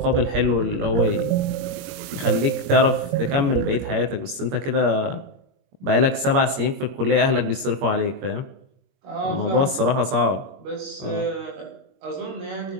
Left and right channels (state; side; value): late; left; 21 ms